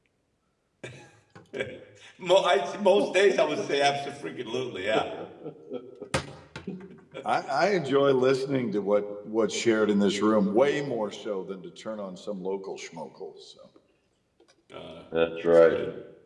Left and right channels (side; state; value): both; identical; correlation 1.00